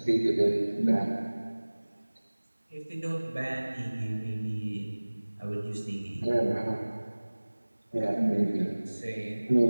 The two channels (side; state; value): both; inverted; correlation -1.00